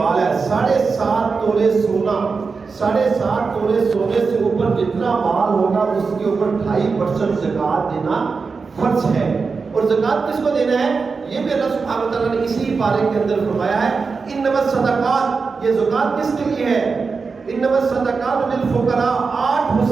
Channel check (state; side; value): quieter; left; 4.8 dB